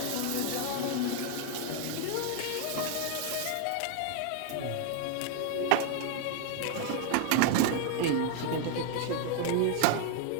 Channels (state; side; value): different; both; correlation 0.00